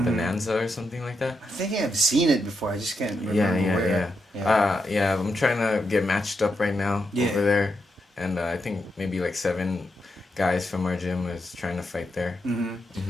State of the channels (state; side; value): normal; both; correlation 0.84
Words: Bonanza or something like that. I think I've seen it before. I just can't remember Yeah. I'm trying to get matched up right now over there, and I think maybe like 7 guys from our gym is trying to fight there.